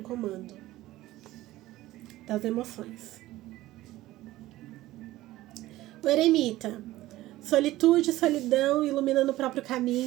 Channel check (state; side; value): quieter; left; 16.4 dB